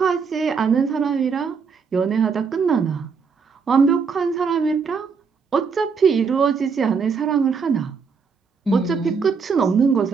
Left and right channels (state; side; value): quieter; left; 5.6 dB